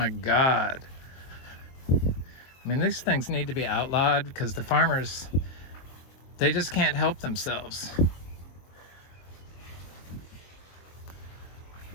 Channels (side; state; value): right; late; 23 ms